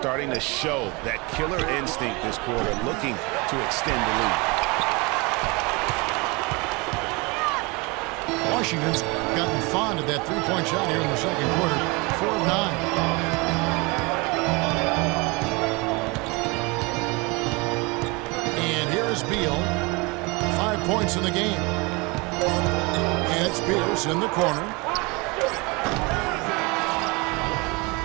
to show that killer instinct this quarter, looking to extend the lead. Washington's gotten fond of that three-point shot here in the second quarter. 4 of 9. And here is Beal. 5 points in the game. And it's Pierce in the corner.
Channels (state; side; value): quieter; left; 27.3 dB